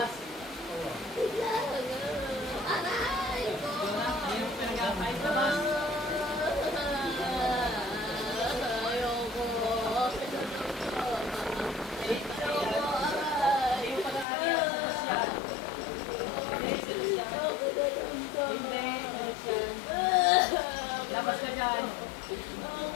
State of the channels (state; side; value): drops out; right; at 14.2 s